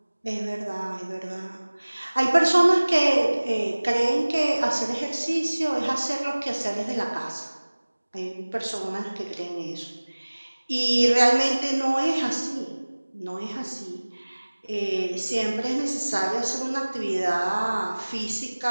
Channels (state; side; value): inverted; both; correlation -1.00